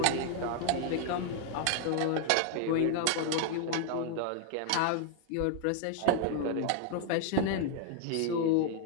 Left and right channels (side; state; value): both; different; correlation 0.00